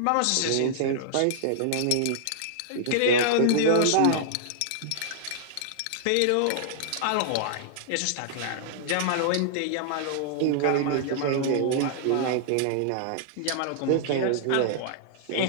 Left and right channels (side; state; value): both; different; correlation -0.01